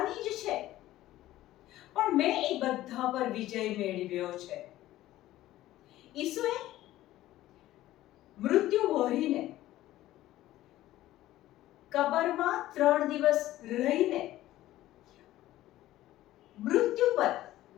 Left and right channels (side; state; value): right; quieter; 15.0 dB